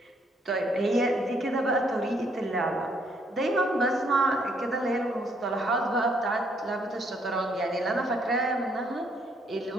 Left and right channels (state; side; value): normal; both; correlation 0.69